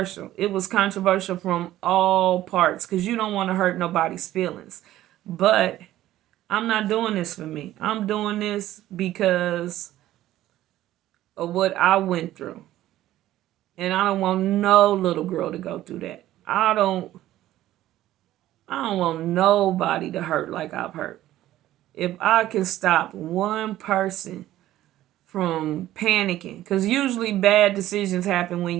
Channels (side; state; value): left; quieter; 14.2 dB